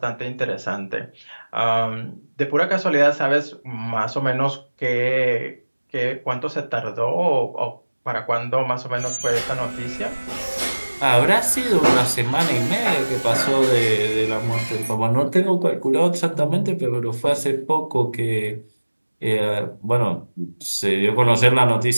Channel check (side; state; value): both; inverted; correlation -1.00